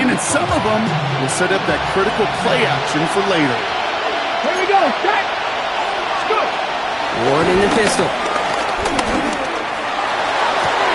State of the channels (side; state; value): both; identical; correlation 1.00